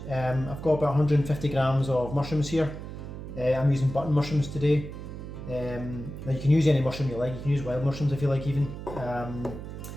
I've got about 150 grams of mushrooms here. I'm using button mushrooms today. Now you can use any mushroom you like, you can use wild mushrooms if you like even.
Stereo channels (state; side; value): noise; right; hum, 10 dB below the sound